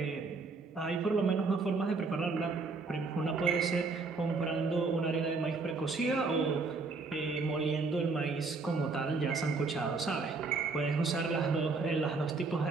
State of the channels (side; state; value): left; quieter; 4.1 dB